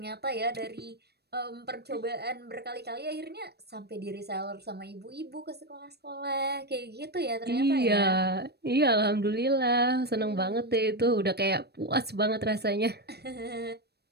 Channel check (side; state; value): left; late; 0.47 ms